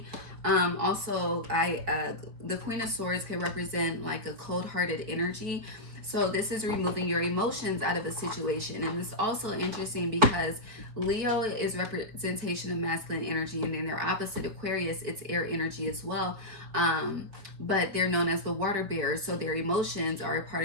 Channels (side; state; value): left; late; 4.3 ms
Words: Also, the Queen of Swords can represent like a cold-hearted energy. So this is removing your emotions out of a situation. And it's also interesting because Leo is representation of masculine energy, and then their opposite, Aquarius, it's air energy as well. But they're known as the water bearers. So their emotions are a